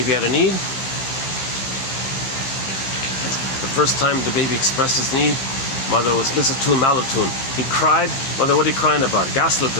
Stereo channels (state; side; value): late; right; 15 ms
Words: had a need. The first time the baby expressed his need, mother was misattuned, malattuned. He cried. Mother, what are you crying about? Gaslit